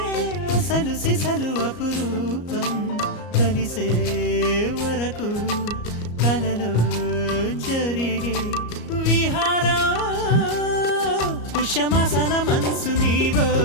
అసలు సిసలు అపురూపం కలిసే వరకు కలలో జరిగే విహారం పుష్యమాసన మనసు నీవో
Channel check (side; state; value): right; late; 34 ms